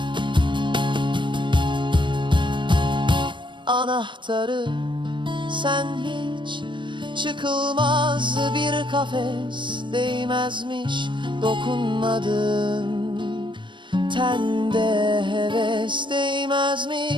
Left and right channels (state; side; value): late; left; 0.23 ms